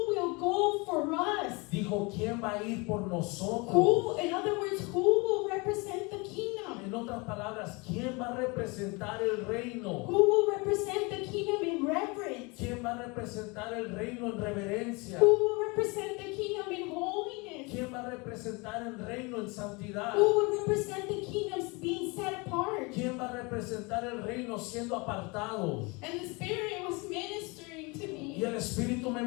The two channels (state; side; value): quieter; right; 27.7 dB